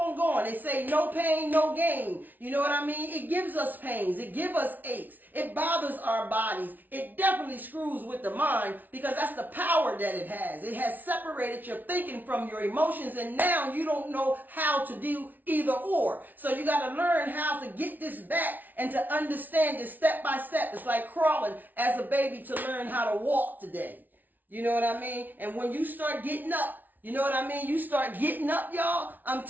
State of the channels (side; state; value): left; late; 0.083 ms